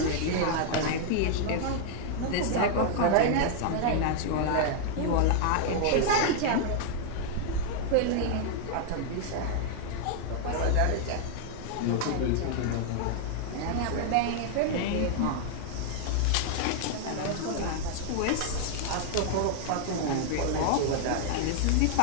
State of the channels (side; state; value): both; different; correlation 0.00